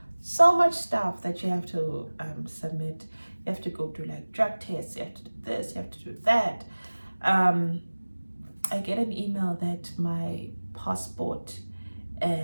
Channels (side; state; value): both; inverted; correlation -1.00